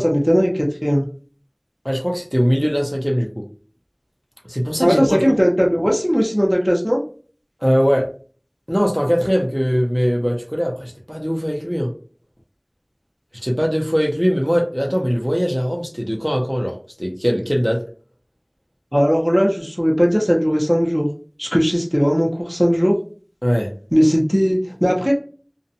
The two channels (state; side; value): identical; both; correlation 1.00